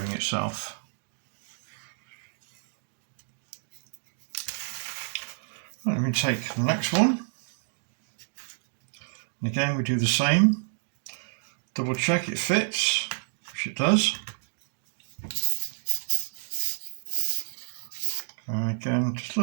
itself. Right, let me take the next one, and again we do the same. Double check it fits, which it does. And again, just a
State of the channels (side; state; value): left; silent; digital silence